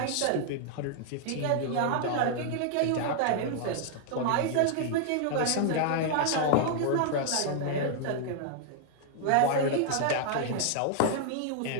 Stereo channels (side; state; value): both; different; correlation 0.00